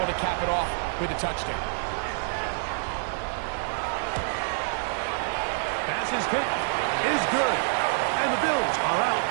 to cap it off with a touchdown. Pass's kick is good. And the Bills are out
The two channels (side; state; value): left; silent; digital silence